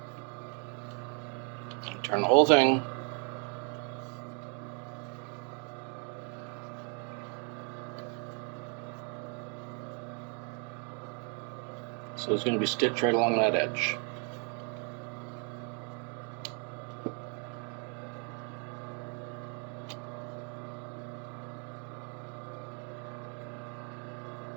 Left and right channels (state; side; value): quieter; left; 39.1 dB